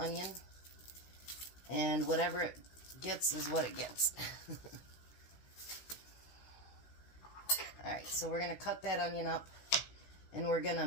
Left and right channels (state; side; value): late; right; 16 ms